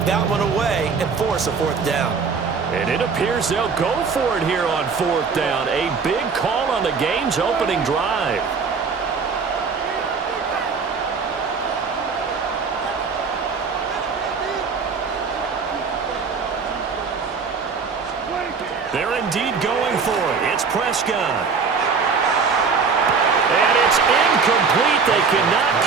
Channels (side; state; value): left; quieter; 5.3 dB